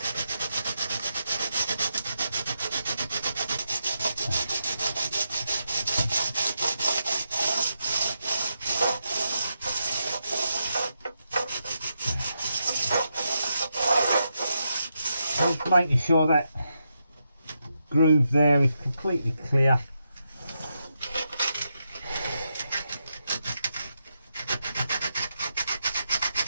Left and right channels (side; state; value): both; inverted; correlation -0.84